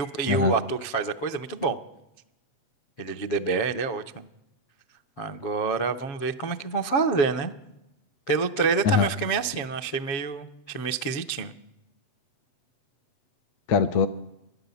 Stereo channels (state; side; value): late; right; 7.2 ms